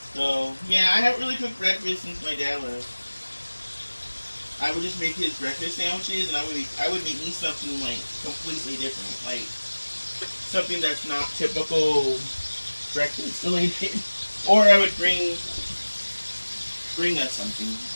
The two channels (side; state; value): both; inverted; correlation -1.00